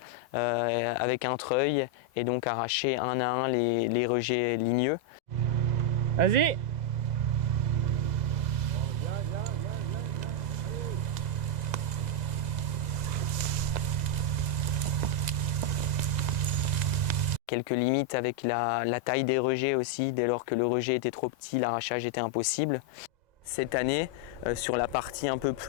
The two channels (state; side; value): late; left; 2.0 ms